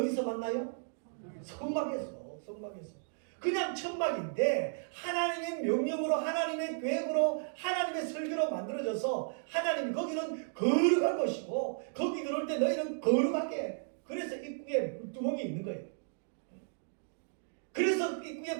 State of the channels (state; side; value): silent; left; digital silence